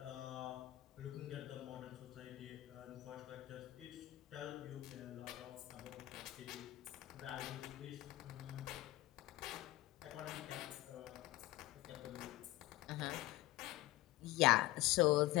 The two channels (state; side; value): quieter; right; 17.2 dB